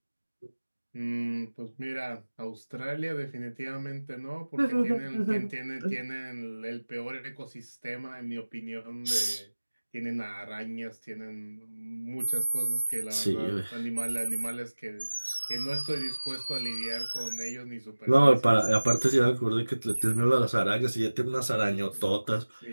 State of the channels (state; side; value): inverted; both; correlation -1.00